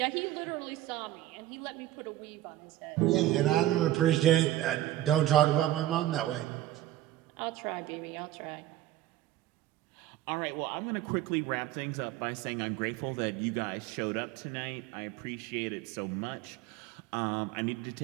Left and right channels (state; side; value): quieter; left; 14.1 dB